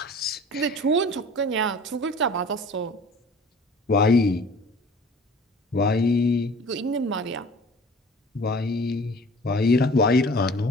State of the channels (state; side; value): normal; both; correlation 0.45